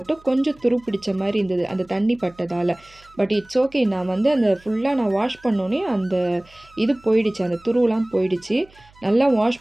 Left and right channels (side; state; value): right; noise; hum, 28 dB below the sound